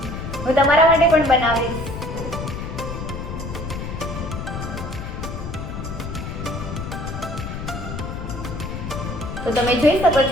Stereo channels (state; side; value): noise; left; rumble, 7 dB below the sound